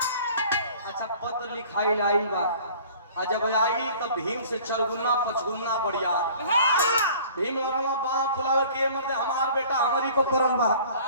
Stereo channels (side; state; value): both; inverted; correlation -0.49